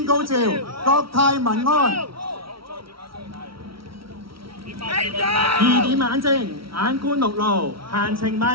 高照，國泰民安。2點眼睛，眼觀六路，閒情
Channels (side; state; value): left; late; 0.75 ms